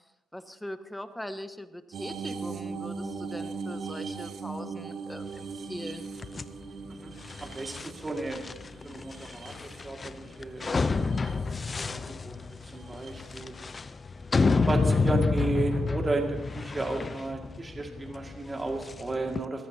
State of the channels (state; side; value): normal; both; correlation 0.88